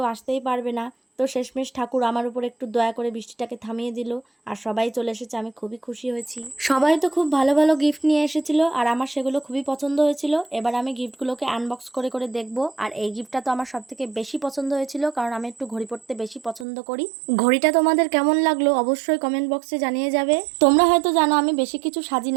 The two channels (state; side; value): drops out; left; at 16.7 s